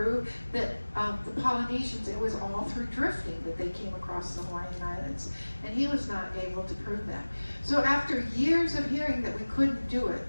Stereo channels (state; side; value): inverted; both; correlation -1.00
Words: that the Polynesians, it was all through drifting that they came across the Hawaiian Islands. And he was not able to prove that. So after years of hearing that we couldn't do it,